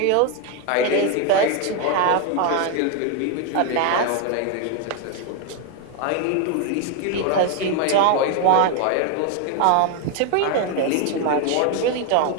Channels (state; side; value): different; both; correlation 0.01